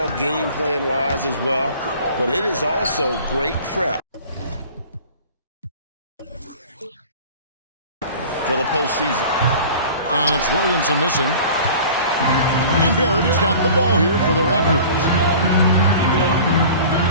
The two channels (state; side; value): inverted; both; correlation -0.42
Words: game plan-wise as well, but it is also great prep for the postseason. And it's Williamson missing. And Barrett has got the ball here for the Raptors.